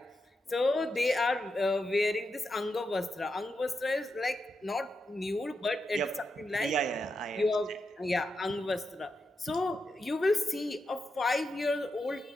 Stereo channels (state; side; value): normal; both; correlation 0.86